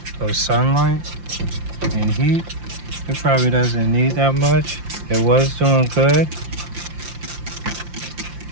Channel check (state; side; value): late; left; 5.8 ms